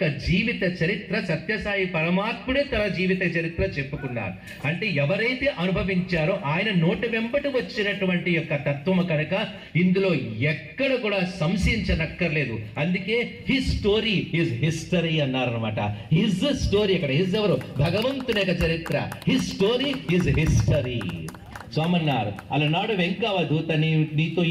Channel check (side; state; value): both; identical; correlation 1.00